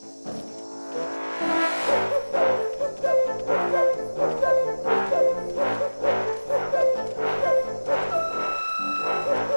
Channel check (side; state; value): both; inverted; correlation -1.00